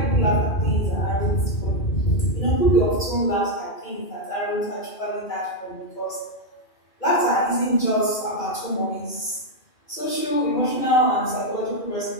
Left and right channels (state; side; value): late; right; 2.5 ms